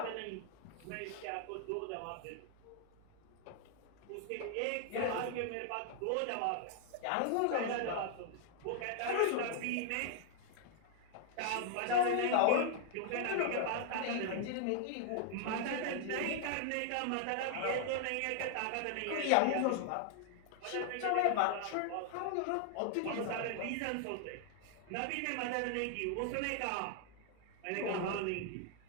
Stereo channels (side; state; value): both; different; correlation 0.00